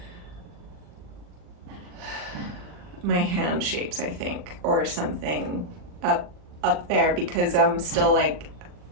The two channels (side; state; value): left; late; 40 ms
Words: my hand shapes, I think, or something up there, because I'm still